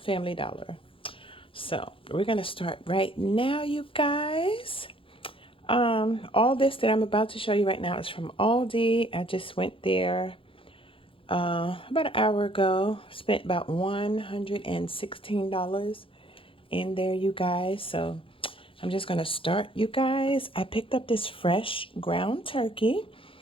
Dollar. So we're gonna start right now, you guys. All this that I'm about to show you right now is from Aldi. I just went there about an hour ago. Spent about $116 in there, you guys. So I'm just gonna start, you guys. I picked up this fresh ground turkey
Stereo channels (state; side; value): late; right; 0.26 ms